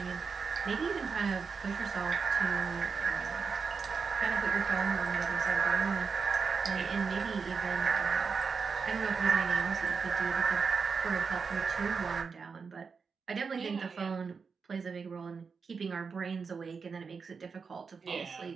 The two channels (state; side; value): quieter; left; 5.4 dB